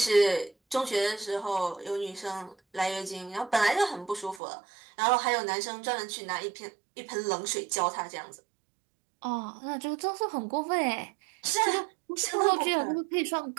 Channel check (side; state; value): left; drops out; at 4.4 s